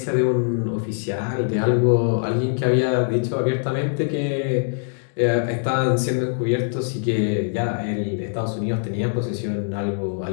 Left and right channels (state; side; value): silent; right; digital silence